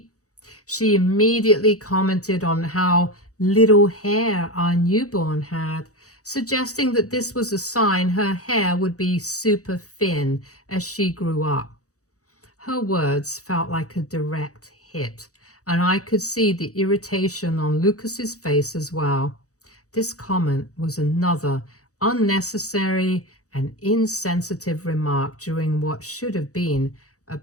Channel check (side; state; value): right; late; 0.66 ms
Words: she immediately commented on how little hair our newborn had, suggesting that this was a sign her hair would be super thin as she grew up. Her words felt like a direct hit, and I could see the irritation on Lucas's face as well. This comment was another unnecessary and insensitive remark during what should have been a